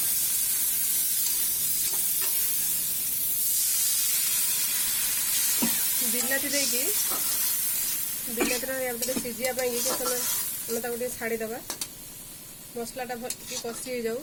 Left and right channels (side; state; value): both; identical; correlation 1.00